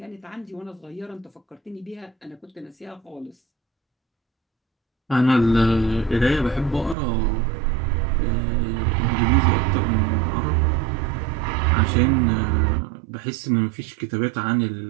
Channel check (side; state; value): left; drops out; at 7.0 s